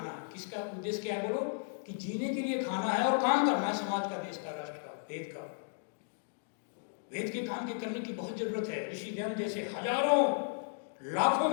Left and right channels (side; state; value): right; silent; digital silence